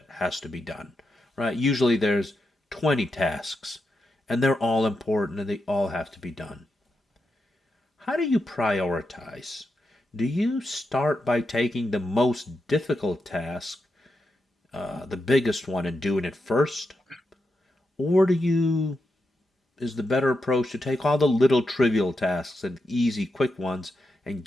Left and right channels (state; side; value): normal; both; correlation 0.86